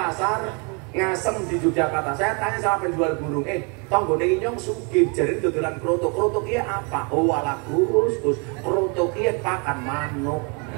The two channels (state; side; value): quieter; left; 34.1 dB